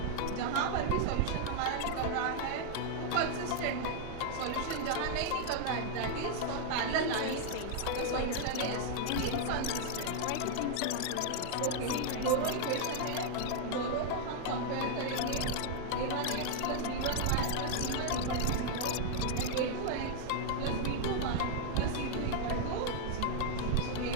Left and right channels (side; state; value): both; different; correlation 0.00